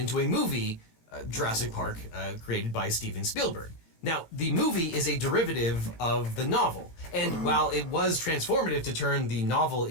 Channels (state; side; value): late; right; 18 ms